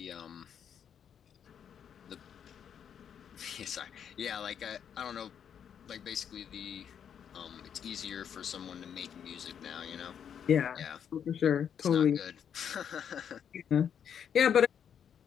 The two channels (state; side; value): quieter; right; 8.2 dB